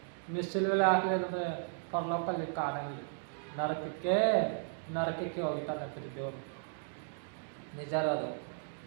ನೀವು ಸಿಲುವೆಗೆ ಹಾಕಲಿದ್ರೆ ಪರಲೋಕಲ್ಲಿ ಕಾಣಂಗಿಲ್ಲ, ನರಕಕ್ಕೆ ಹೋಗ್ತಾನಂತ್ರಿ ದೇವರು. ನಿಜ ಅದು.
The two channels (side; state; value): left; silent; digital silence